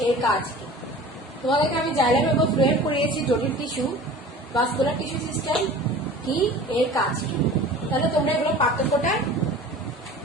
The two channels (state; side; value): normal; both; correlation 0.41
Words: এর কাজ কি। তোমাদেরকে আমি জাইলেম এবং ফ্লোয়েম পড়িয়েছি জটিল টিস্যু, ভাস্কুলার টিস্যু সিস্টেম কি, এর কাজ কি। তাহলে তোমরা এগুলো পার্থক্যটা